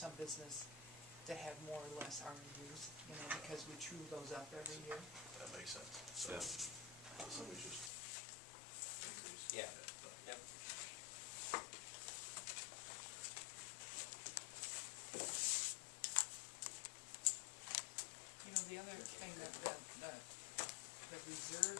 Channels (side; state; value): right; drops out; at 7.9 s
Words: business that had more or less RMUs, you know, because we true those up every year. That makes sense. So, so we just increase. Yeah. Yep. You know, the other thing that the reserve